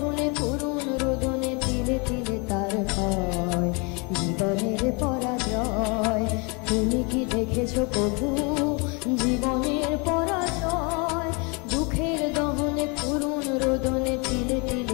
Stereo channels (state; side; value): quieter; right; 31.8 dB